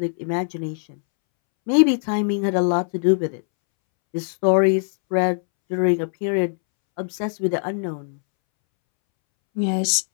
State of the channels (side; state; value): right; silent; 64 dB below the other